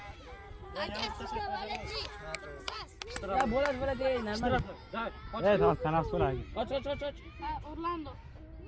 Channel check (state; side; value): identical; both; correlation 1.00